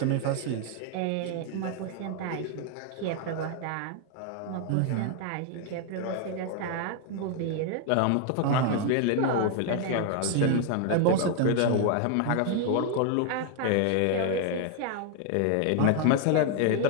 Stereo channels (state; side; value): different; both; correlation 0.00